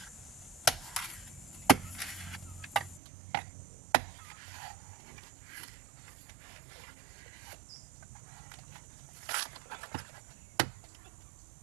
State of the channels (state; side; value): drops out; left; at 3.0 s